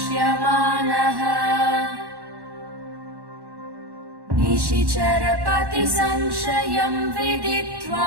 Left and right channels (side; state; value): left; late; 1.1 ms